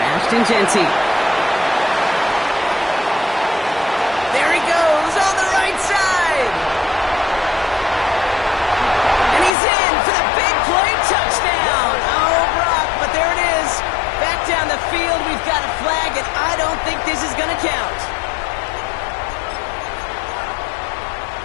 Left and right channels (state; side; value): drops out; right; at 9.5 s